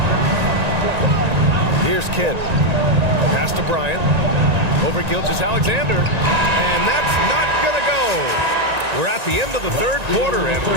Here's Kidd. Pass to Bryant. Over Gilgeous-Alexander. And that's not going to go. We're at the end of the third quarter, and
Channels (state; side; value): late; left; 1.9 ms